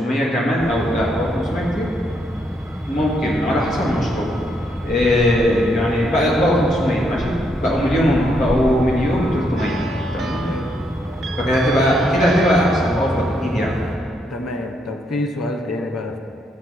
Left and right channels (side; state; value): both; normal; correlation 0.76